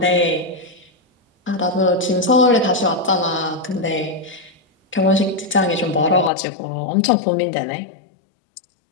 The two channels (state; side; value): drops out; right; at 6.3 s